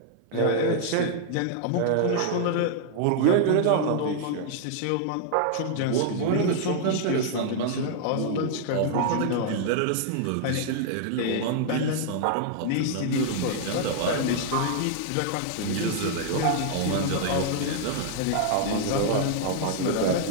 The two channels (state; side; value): different; both; correlation -0.01